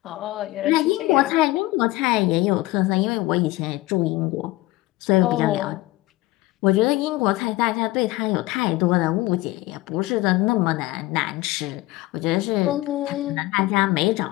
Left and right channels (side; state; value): right; quieter; 18.9 dB